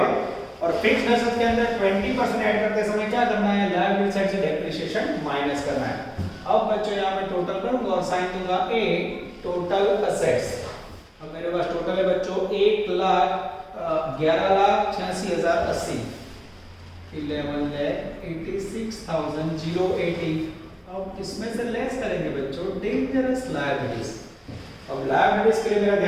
और फिक्स्ड एसेट के अंदर 20% ऐड करते समय क्या करना है, लायबिलिटी साइड से डेप्रिसिएशन माइनस करना है. अब बच्चों यहां मैं टोटल करूंगा और साइन दूंगा ए टोटल एसेट्स. अब मेरे पास टोटल है बच्चों 1,11,86,080. 11,86,080. अब इसमें से लेस करेंगे बच्चों डेंजरस लायबिलिटीज. अब लायबिलिटीज के लिए मेरा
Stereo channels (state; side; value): identical; both; correlation 1.00